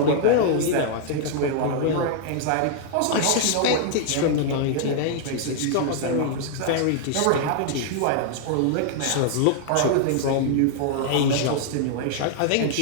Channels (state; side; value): different; both; correlation -0.01